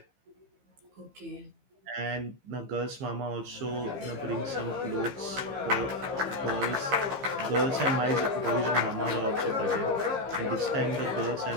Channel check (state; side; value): late; left; 15 ms